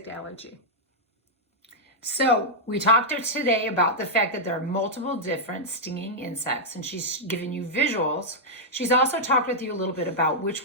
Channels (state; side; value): normal; both; correlation -0.07